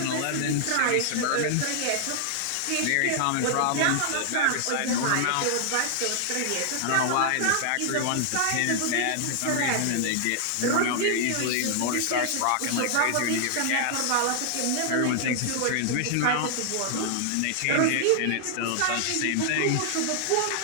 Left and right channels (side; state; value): both; different; correlation 0.00